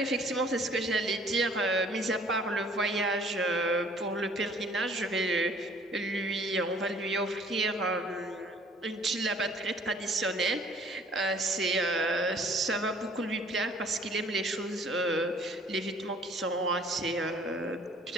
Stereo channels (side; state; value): both; normal; correlation 0.56